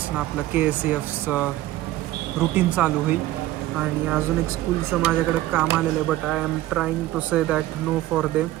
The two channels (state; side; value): quieter; left; 15.7 dB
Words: आपलं KSEFचं रुटीन चालू होईल. आणि अजून एक स्कूलचं माझ्याकडे काम आलेलं आहे, but I am trying to say that no for them,